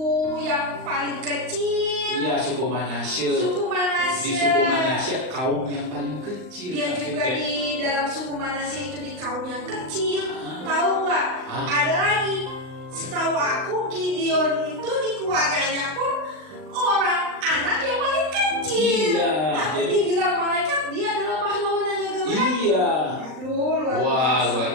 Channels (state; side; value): late; left; 39 ms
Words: yang paling kecil. Iya, suku Manasye. Di suku Manasye kaum yang paling kecil. Dia juga di dalam suku Manasye itu di kaum yang kecil. Tahu nggak? Ada lagi. Setahu aku Gideon itu di keluarganya pun anak yang paling kecil. Iya. Tapi dibilang malaikat dia adalah pahlawan yang gagah berani. Iya. Aduh, luar